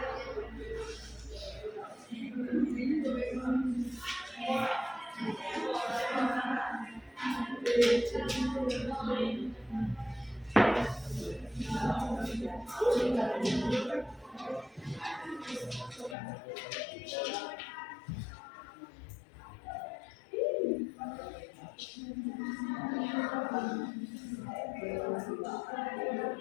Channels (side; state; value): right; drops out; at 16.2 s